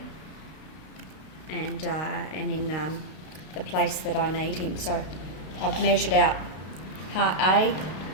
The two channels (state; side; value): late; right; 32 ms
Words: and in the place that I need him. So I've measured out part A